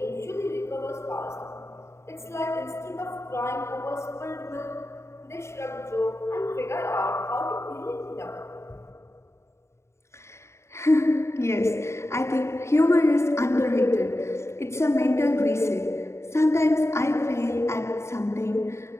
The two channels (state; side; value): late; right; 0.13 ms